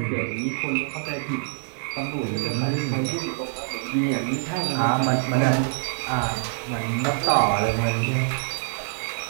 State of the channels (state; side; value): silent; left; digital silence